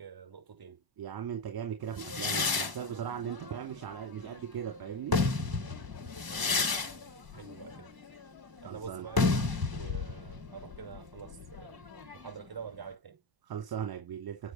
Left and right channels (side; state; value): left; late; 1.0 ms